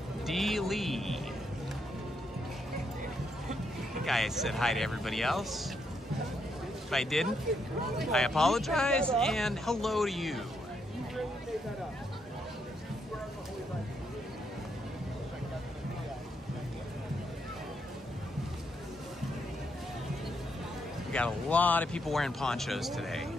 D. Lee. I think I said hi to everybody else. If I didn't, I apologize, and hello to you. got a lot of people wearing ponchos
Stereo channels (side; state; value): both; normal; correlation 0.77